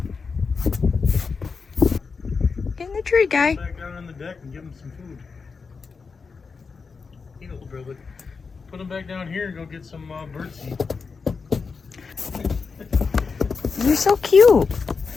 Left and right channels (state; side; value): quieter; right; 5.0 dB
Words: Get in the tree, guy. Back down on the deck and give him some food. Eat a little bit of it. Put him back down here and go get some birdseed. You're so cute.